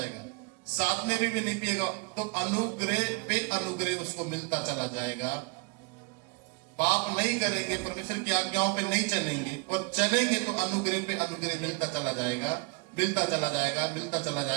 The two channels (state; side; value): quieter; left; 29.6 dB